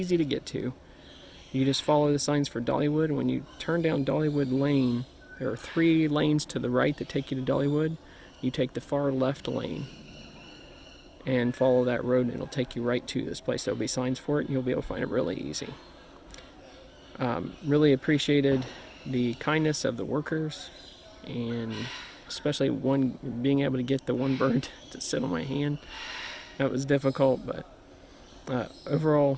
to get to. You just follow the signs for Dollywood. When you turn down Dollywood Lane, there are 3 lanes to the right that take you to Dollywood. You take the far left lane and follow that road, and it'll take you right to this place. There'll be signs for it, and you'll be able to find it really easy. Really appreciated the kindness of the workers, and especially being able to get the one bird to sit on my hand. That was difficult, but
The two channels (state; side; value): identical; both; correlation 1.00